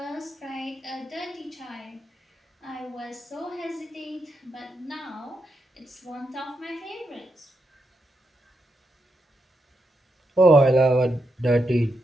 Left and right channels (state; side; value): normal; both; correlation 0.83